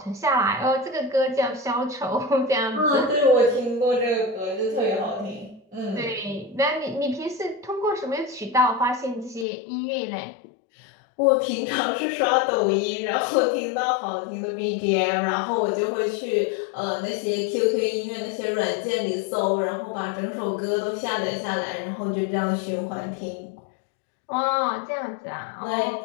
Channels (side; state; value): right; drops out; at 9.5 s